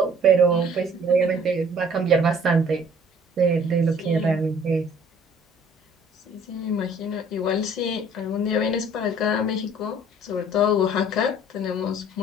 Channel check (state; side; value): normal; both; correlation 0.54